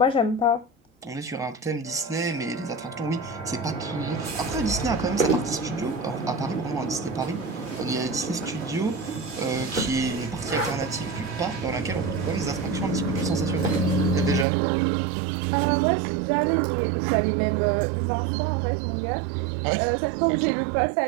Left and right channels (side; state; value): left; drops out; at 14.5 s